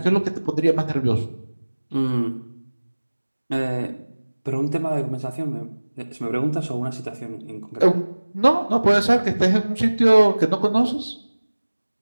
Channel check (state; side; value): inverted; both; correlation -1.00